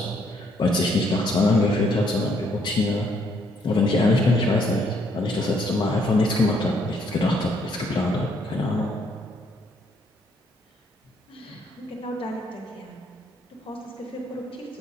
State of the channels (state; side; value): normal; both; correlation 0.69